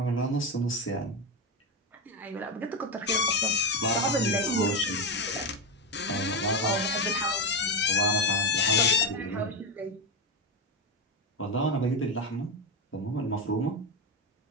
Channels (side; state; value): both; normal; correlation 0.11